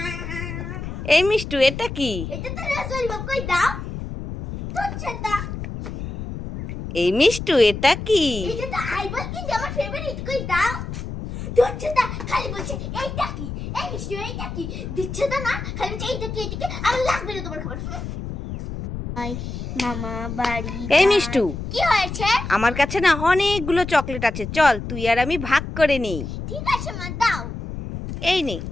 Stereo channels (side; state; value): left; noise; rumble, 7 dB below the sound